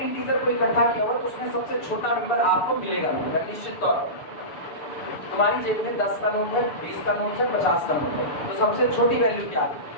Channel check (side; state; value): right; late; 6.8 ms